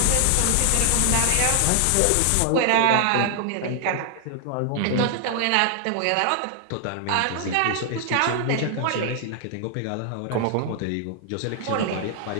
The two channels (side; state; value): both; different; correlation 0.00